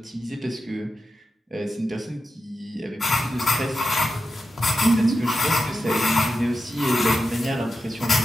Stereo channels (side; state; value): both; normal; correlation 0.90